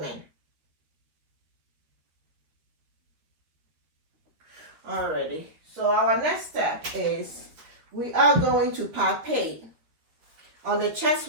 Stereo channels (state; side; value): late; left; 13 ms